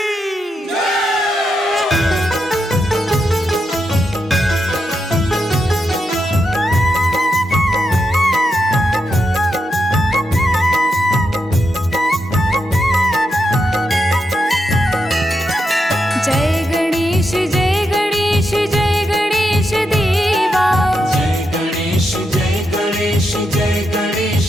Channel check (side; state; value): both; normal; correlation 0.84